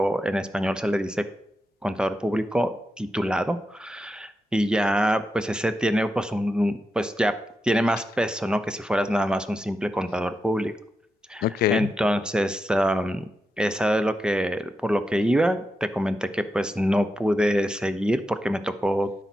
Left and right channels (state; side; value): normal; both; correlation 0.87